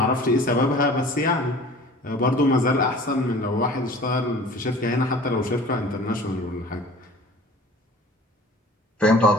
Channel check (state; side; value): normal; both; correlation 0.45